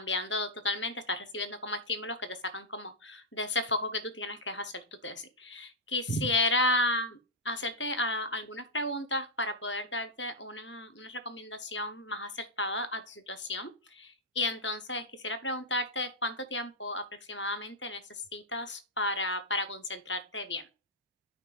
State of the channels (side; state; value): both; normal; correlation -0.06